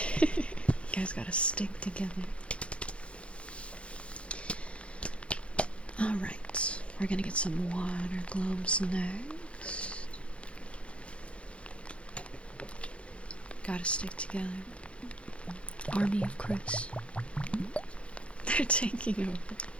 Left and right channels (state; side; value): late; right; 0.060 ms